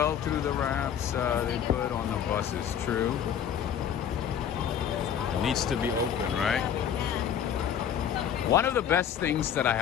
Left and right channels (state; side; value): quieter; right; 8.8 dB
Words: through the wraps they put on the buses. True. It needs to be open, right? One of the best things that I